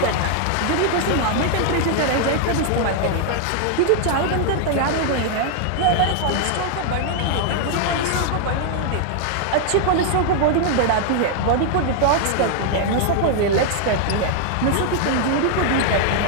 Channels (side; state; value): both; different; correlation 0.00